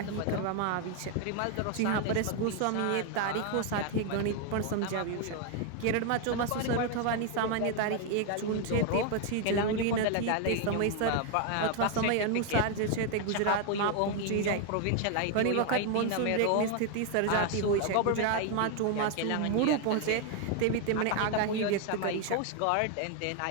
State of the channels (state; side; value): different; both; correlation 0.01